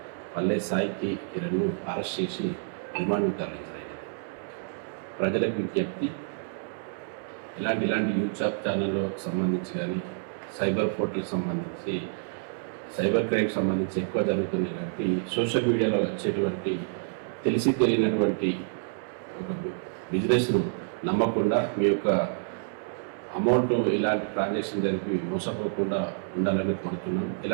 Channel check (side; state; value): left; silent; digital silence